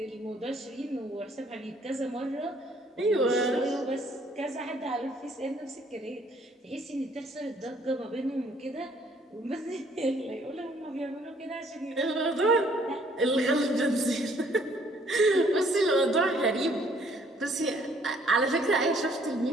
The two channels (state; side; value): normal; both; correlation 0.62